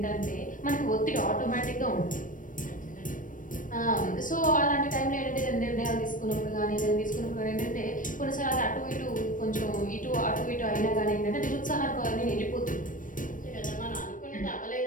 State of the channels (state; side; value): late; right; 0.38 ms